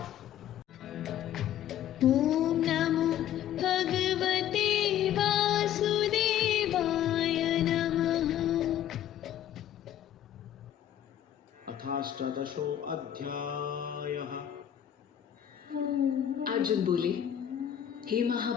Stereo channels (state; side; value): quieter; right; 10.7 dB